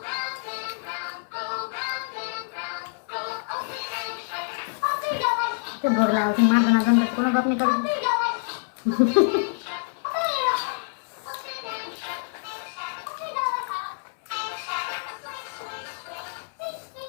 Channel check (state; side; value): silent; right; 60 dB below the other